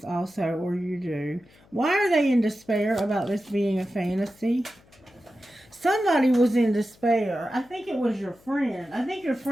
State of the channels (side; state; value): left; noise; hum, 29 dB below the sound